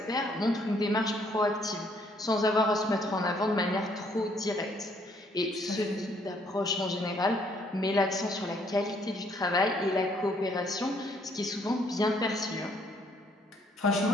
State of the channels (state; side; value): normal; both; correlation 0.66